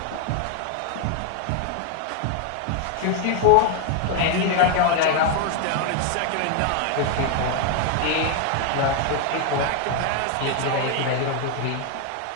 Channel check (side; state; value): both; different; correlation 0.00